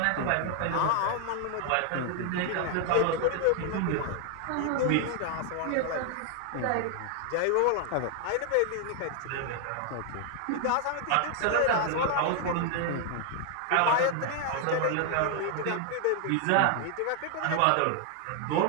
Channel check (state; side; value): different; both; correlation 0.00